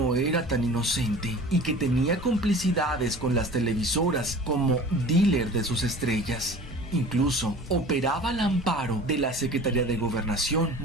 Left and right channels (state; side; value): normal; both; correlation 0.42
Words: era tan inocente y que tenía complicidades con las televisoras como dealer de sus estrellas. Incluso operaba al amparo de la Secretaría de Gobernación,